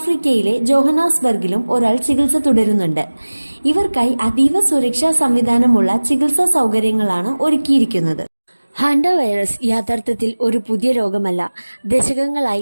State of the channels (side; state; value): both; inverted; correlation -1.00